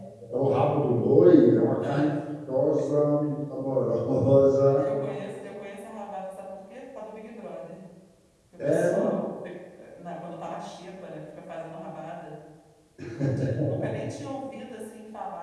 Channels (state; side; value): identical; both; correlation 1.00